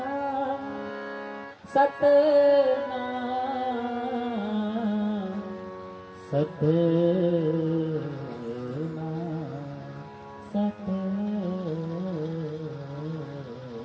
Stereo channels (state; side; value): identical; both; correlation 1.00